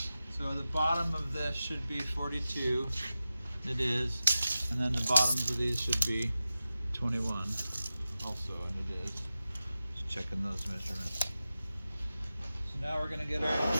So the bottom of this should be 42. It is. And then the bottoms of these should be 21 also, and it is. Just checking those measurements. So now we're going to get our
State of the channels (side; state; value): both; inverted; correlation -0.94